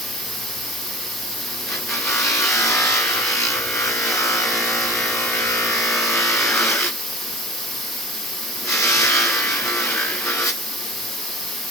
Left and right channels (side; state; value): both; normal; correlation 0.37